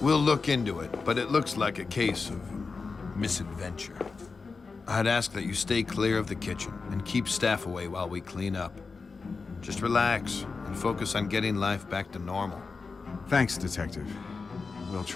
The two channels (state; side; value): quieter; right; 4.5 dB